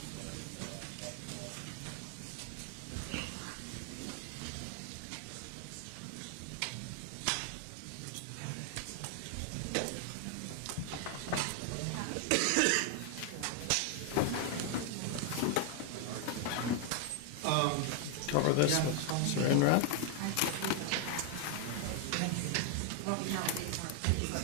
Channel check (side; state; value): both; different; correlation 0.00